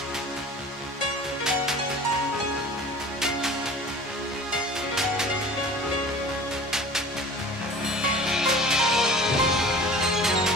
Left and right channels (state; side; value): normal; both; correlation 0.42